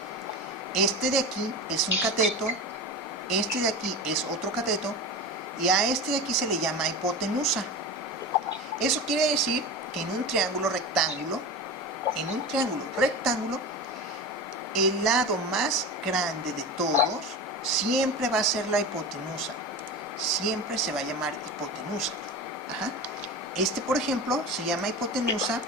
Este de aquí es un cateto, este de aquí es otro cateto, y a este de aquí se le llama hipotenusa. Eso quiere decir que en un triángulo rectángulo, el lado más grande de todos siempre va a ser la hipotenusa. Siempre se va a llamar hipotenusa. Ajá. Este, por ejemplo, se llama hipotenusa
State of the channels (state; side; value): normal; both; correlation 0.28